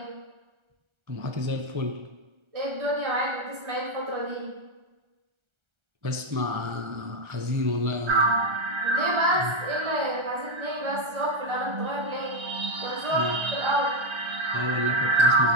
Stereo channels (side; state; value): left; late; 1.3 ms